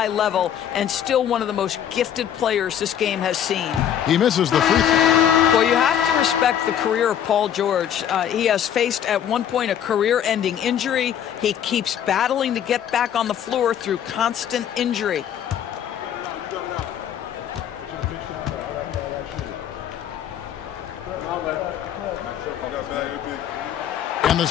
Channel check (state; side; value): quieter; right; 9.7 dB